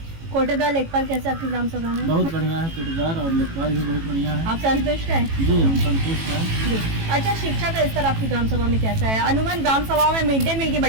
कोटेदार लेखपाल कैसे आपकी ग्राम सभा में? बहुत बढ़िया है, कोटेदार और लेखपाल भी बहुत बढ़िया है। आप संतुष्ट हैं? जी, हम संतुष्ट हैं। अच्छा, शिक्षा का स्तर आपकी ग्राम सभा में कैसा है? अनुमान ग्राम सभा में मिड डे मील की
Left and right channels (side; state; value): left; late; 18 ms